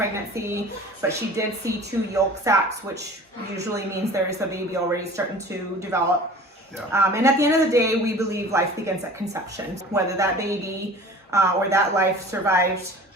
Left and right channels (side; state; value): both; normal; correlation 0.43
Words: but she did see 2 yolk sacs, which usually means there is a baby already starting to develop. Yeah. And at the end of the day, we believe life begins at conception. Whether that baby or that life survived,